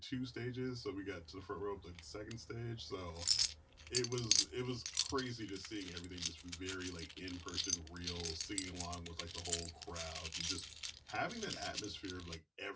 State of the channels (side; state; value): both; identical; correlation 1.00